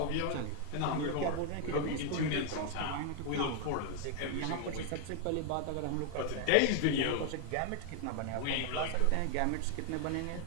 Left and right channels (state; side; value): different; both; correlation 0.00